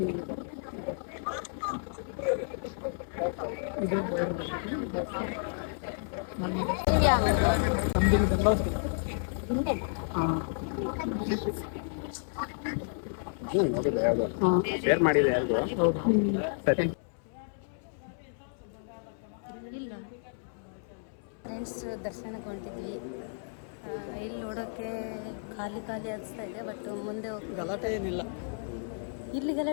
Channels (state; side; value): silent; right; 57 dB below the other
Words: ಶೇರ್ ಮಾಡಿದೆ ಯಾರಿಗೂ. ಸರಿ. ಇಲ್ಲ ಫ್ರೆಂಡ್ಸ್, ದರ್ಶನಕ್ಕೆ ಹೊಂಟಿದ್ವಿ. ಇಲ್ಲಿ ನೋಡೋಕ್ಕೆ ಖಾಲಿ ಅನಿಸ್ತಾ ಇದೆ. ಬಟ್ ಮುಂದೆ ಗಲಾಟೆ ಏನಿಲ್ಲ. ಇಲ್ಲಿ